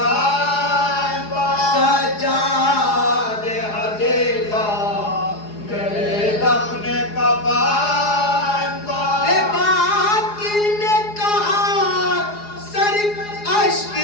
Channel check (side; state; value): right; late; 4.8 ms